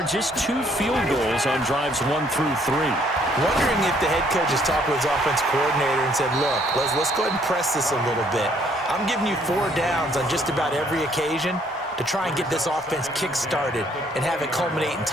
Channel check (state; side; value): normal; both; correlation 0.65